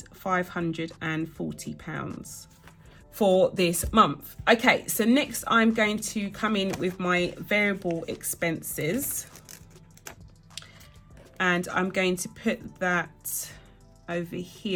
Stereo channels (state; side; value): identical; both; correlation 1.00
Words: for this month. Okay, so next I'm going to come in with my variable expenses, and I'm going to put that over